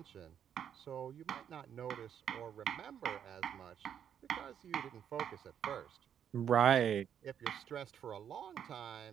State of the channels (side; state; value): left; quieter; 8.8 dB